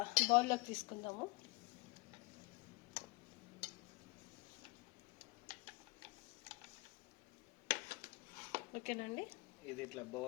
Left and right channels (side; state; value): right; quieter; 25.7 dB